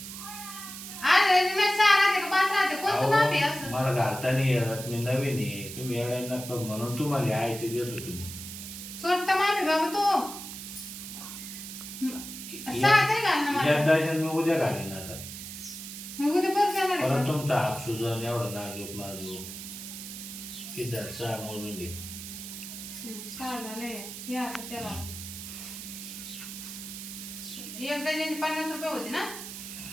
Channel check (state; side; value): noise; right; hiss, 10 dB below the sound